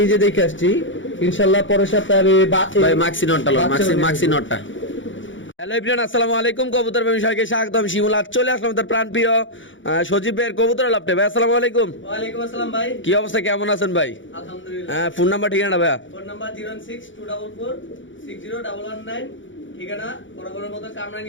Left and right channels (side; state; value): right; late; 0.56 ms